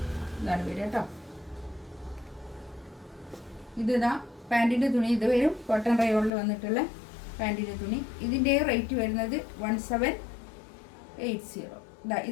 ഇതാണ് വരിക കേട്ടോ. ഇതാ പാൻറ്റിൻ്റെ തുണി ഇത് വരും. കോട്ടൺ റയോണിൽ വന്നിട്ടുള്ള പാൻറ്റിൻ്റെ തുണി. ഇതിൻ്റെ റേറ്റ് വരുന്നത് 1780.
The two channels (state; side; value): drops out; right; at 6.3 s